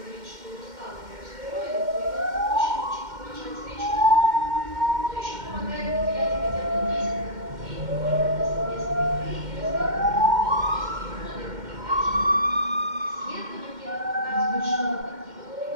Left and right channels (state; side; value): late; left; 2.1 ms